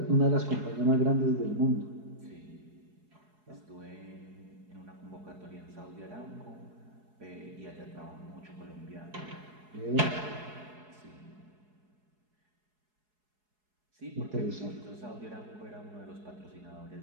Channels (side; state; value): left; late; 4.7 ms